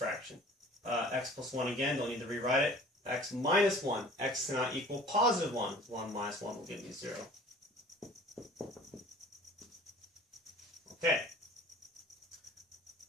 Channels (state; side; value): normal; both; correlation 0.47